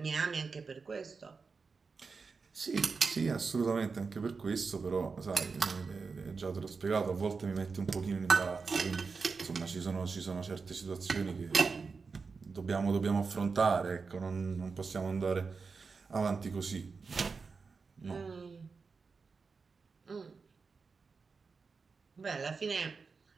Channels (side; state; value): left; quieter; 4.8 dB